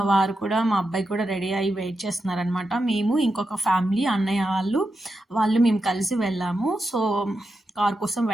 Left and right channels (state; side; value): normal; both; correlation 0.88